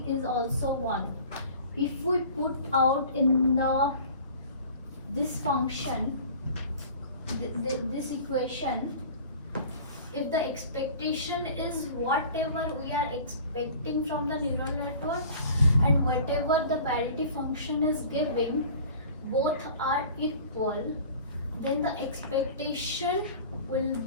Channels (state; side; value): inverted; both; correlation -0.44